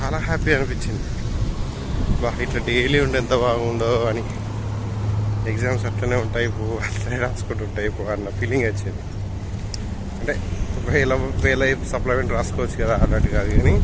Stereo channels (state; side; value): identical; both; correlation 1.00